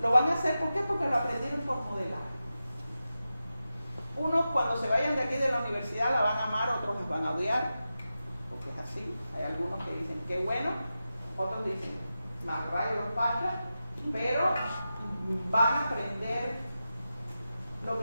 Lo van a hacer, ¿por qué? Porque lo aprendieron por modelar. Unos cuando se vayan de aquí de la universidad la van a amar, otros los van a odiar, porque es así. Hay algunos que dicen, qué bueno, otros dicen, más rayos los pachas, pero van a aprender lo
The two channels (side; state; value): both; inverted; correlation -0.92